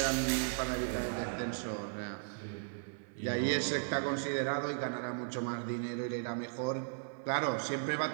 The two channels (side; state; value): left; silent; 54 dB below the other